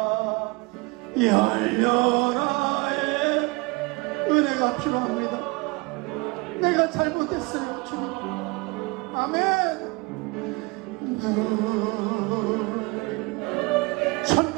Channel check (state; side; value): quieter; left; 26.1 dB